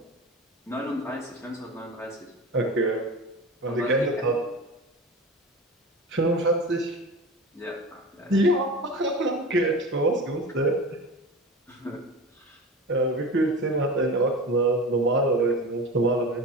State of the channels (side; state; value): both; normal; correlation 0.31